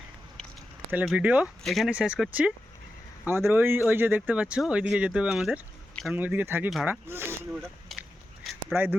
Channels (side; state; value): both; normal; correlation 0.90